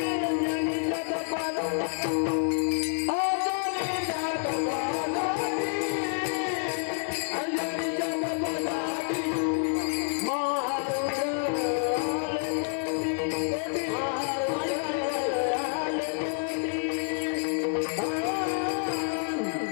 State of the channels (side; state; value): right; silent; 59 dB below the other